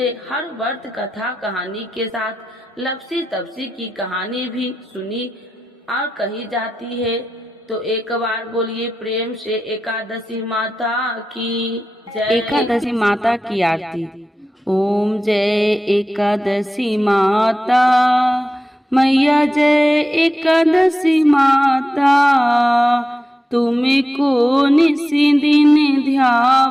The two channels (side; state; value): both; normal; correlation 0.92